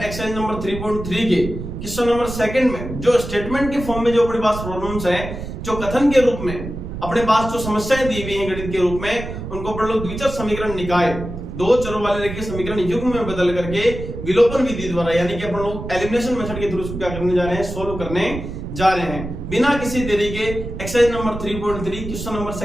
नंबर 3.3 के क्वेश्चन नंबर सेकंड में जो स्टेटमेंट के फॉर्म में जो अपने पास प्रॉब्लम्स है, जो कथन के रूप में अपने पास जो समस्याएं दी हुई हैं गणित के रूप में, उनको अपन लोग द्विचर समीकरण निकाय दो चरों वाले रेखीय समीकरण युग्म में बदल करके विलोपन विधि द्वारा यानी कि अपन लोग एलिमिनेशन मेथड के थ्रू इसको क्या करने जा रहे हैं, सोल्व करने जा रहे हैं। बिना किसी देरी के exercise number 3.3 question number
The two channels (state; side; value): noise; right; rumble, 8 dB below the sound